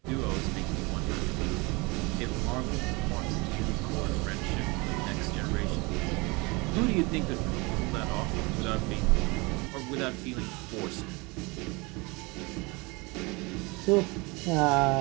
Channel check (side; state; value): left; quieter; 26.3 dB